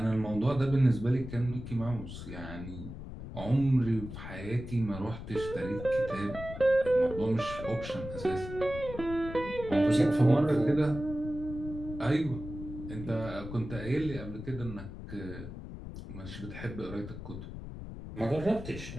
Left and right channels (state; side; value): noise; left; rumble, 10 dB below the sound